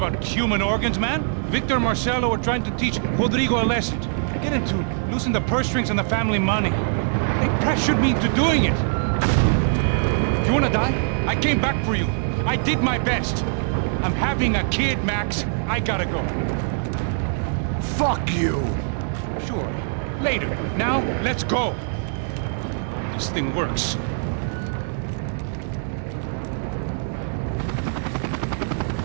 human organs, man. Victor and Marcelo are trying to teach Rodrigo a lesson. Get into losing the purse strings and the family money. They pressured me into doing it. You wanna die? I came back for you. I did my best. I'm having a kid, Max. I gotta go. Fuck you! Sure. Later. Now, let's go. This thing works.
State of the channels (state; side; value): silent; left; digital silence